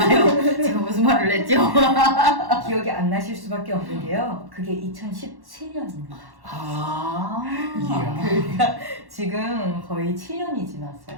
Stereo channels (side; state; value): left; late; 1.1 ms